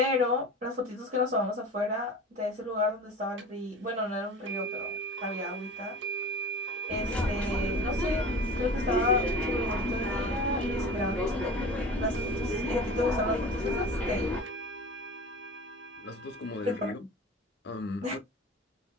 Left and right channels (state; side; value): normal; both; correlation 0.36